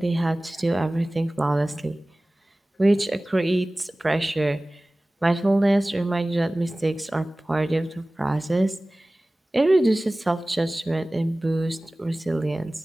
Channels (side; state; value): both; normal; correlation 0.98